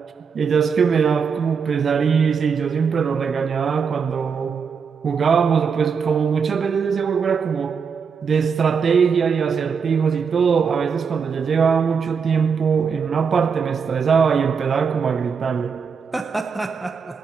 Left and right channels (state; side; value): quieter; left; 6.1 dB